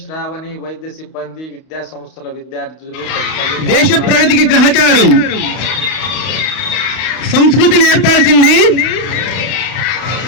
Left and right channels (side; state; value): right; late; 31 ms